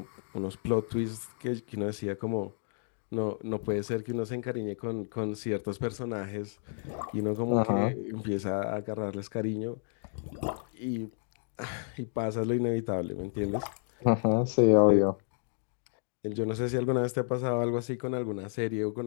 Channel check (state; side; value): silent; right; digital silence